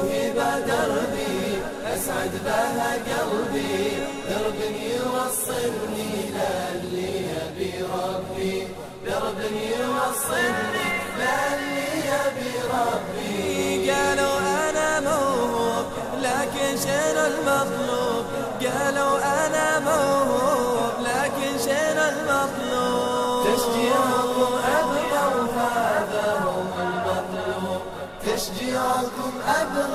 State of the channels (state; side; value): identical; both; correlation 1.00